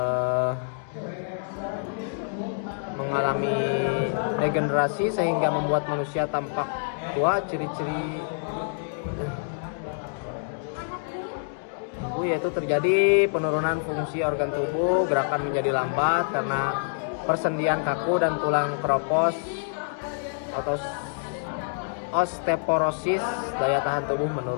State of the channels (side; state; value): right; silent; digital silence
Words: mengalami degenerasi sehingga membuat manusia tampak tua. Ciri-ciri yaitu terjadi penurunan fungsi organ tubuh, gerakan menjadi lambat karena persendian kaku dan tulang keropos atau osteoporosis, daya tahan tubuh